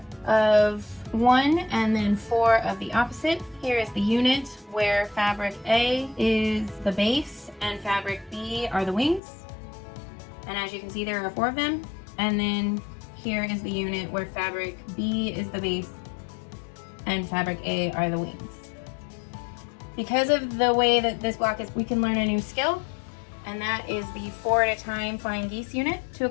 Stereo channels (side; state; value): right; drops out; at 9.2 s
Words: of one and then 4 of the opposite. Here is the unit where fabric A is the base and fabric B are the wings. And as you can see, there are 4 of them. And then here is the unit where fabric B is the base and fabric A are the wings. Because of the way that this block is, we can learn a new skill, and that is the 4 at a time flying geese unit. To